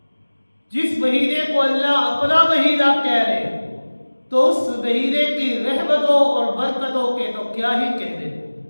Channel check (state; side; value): inverted; both; correlation -1.00